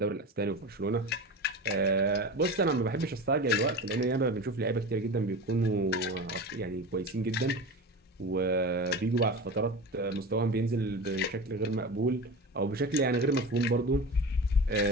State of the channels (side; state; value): both; normal; correlation 0.29